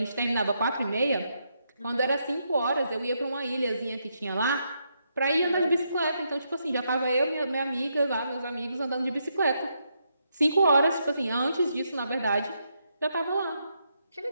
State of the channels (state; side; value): inverted; both; correlation -0.80